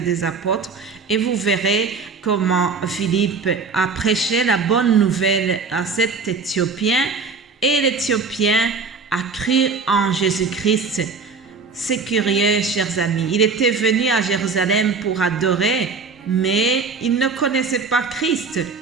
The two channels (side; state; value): left; quieter; 4.6 dB